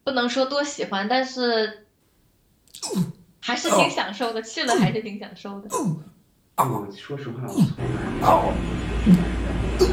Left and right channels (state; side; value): identical; both; correlation 1.00